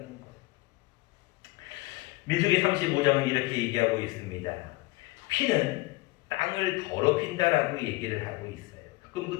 거예요. 민수기 35장은 이렇게 얘기하고 있습니다. 피는 땅을 더럽힌다라고 얘기를 하고 있어요. 그럼 그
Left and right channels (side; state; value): right; quieter; 21.5 dB